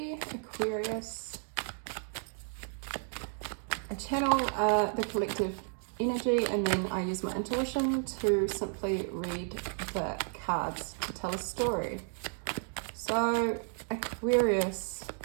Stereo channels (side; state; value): left; silent; 56 dB below the other